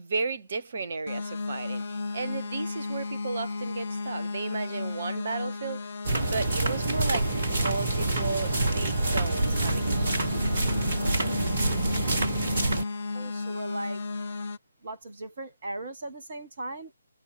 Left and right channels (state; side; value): inverted; both; correlation -0.82